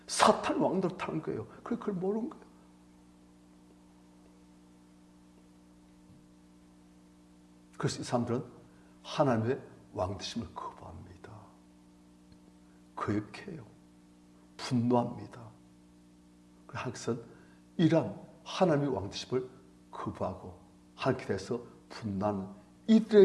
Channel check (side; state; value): both; identical; correlation 1.00